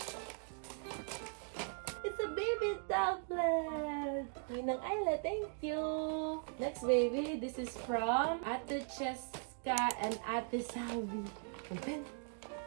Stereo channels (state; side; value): silent; left; 52 dB below the other